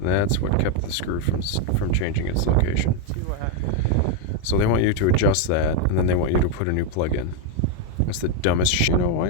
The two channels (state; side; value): different; both; correlation 0.02